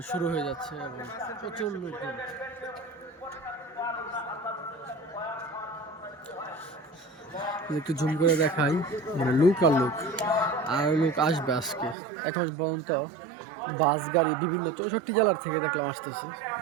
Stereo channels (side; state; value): left; drops out; at 12.0 s